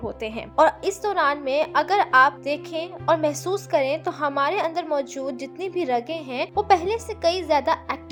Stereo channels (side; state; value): both; identical; correlation 1.00